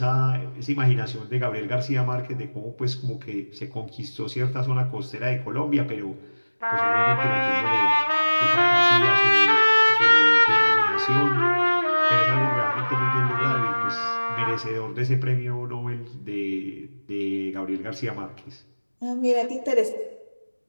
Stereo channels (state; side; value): inverted; both; correlation -1.00